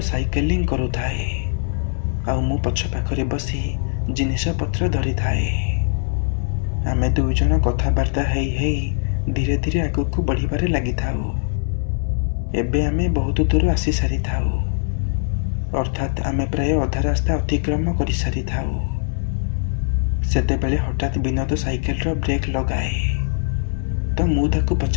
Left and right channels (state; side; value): silent; right; digital silence